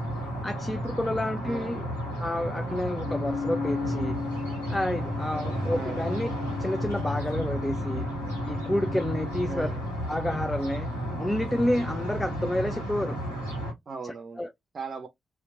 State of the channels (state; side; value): normal; both; correlation 0.86